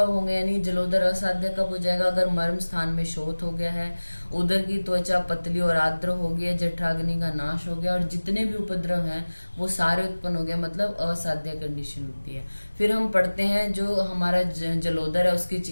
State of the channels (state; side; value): inverted; both; correlation -1.00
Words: होंगे? यानी जलोदर असाध्य कब हो जाएगा? अगर मर्म स्थान में शोथ हो गया है, उदर की त्वचा पतली और आर्द्र हो गई है, जठराग्नि का नाश हो गया, और जितने भी उपद्रव हैं वो सारे उत्पन्न हो गए, मतलब असाध्य कंडीशन होती है। फिर हम पढ़ते हैं जो हमारा जलोदर है उसकी